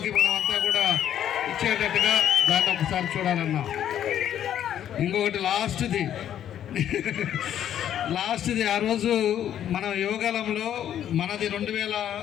మనం అంతా కూడా ఇచ్చేటట్టుగా దాన్ని ఒకసారి చూడాలన్నా. ఇంకొకటి లాస్ట్ది ఆ రోజు మనం యోగాలంలో మనది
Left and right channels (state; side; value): quieter; right; 10.5 dB